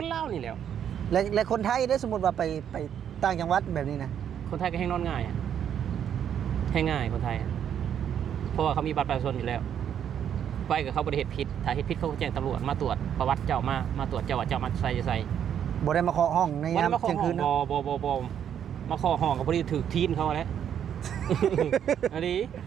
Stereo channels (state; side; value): quieter; left; 9.1 dB